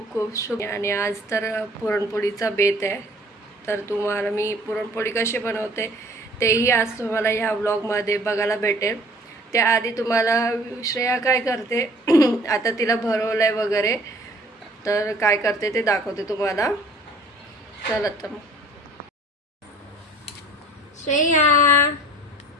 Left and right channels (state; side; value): normal; both; correlation 0.51